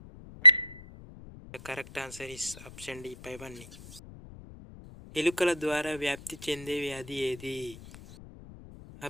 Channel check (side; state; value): left; noise; rumble, 17 dB below the sound